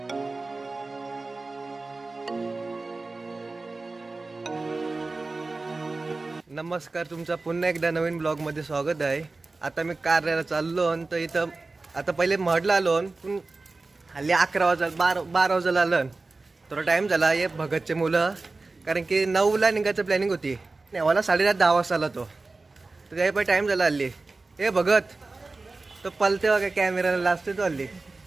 तुमचा पुन्हा एकदा नवीन ब्लॉगमध्ये स्वागत आहे। आता मी कार्याला चाललो तर इथं आता पहिले महडला आलो पण हल्ली 11 वाजता 12 वाजता आलं थोडा टाइम झाला। हे भगतचे मुलं कारण की 9ला निघायचं प्लॅनिंग होती, नेवाला 10:30 वाजता आला तो, तर त्याही पण टाइम झाला हल्ली। हे भगत तो पलते बघा कॅमेराला लाजते तो हल्ली,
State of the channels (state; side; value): quieter; left; 3.5 dB